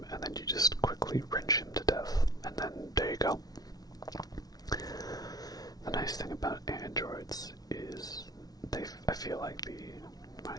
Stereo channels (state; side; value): late; right; 0.19 ms